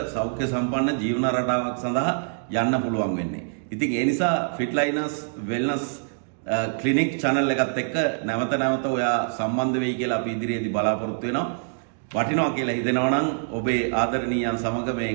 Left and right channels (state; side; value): silent; left; digital silence